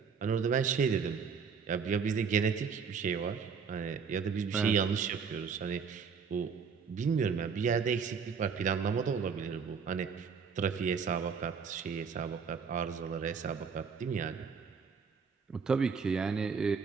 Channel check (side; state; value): left; quieter; 6.0 dB